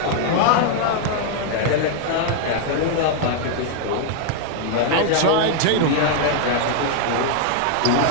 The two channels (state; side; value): different; both; correlation 0.00